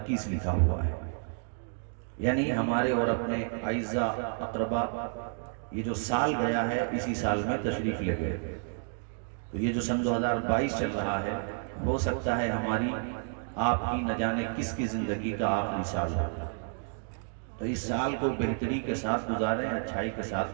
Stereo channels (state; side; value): silent; left; 56 dB below the other